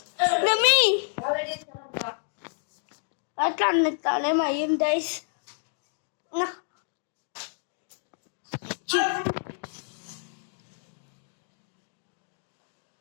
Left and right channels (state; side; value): silent; right; digital silence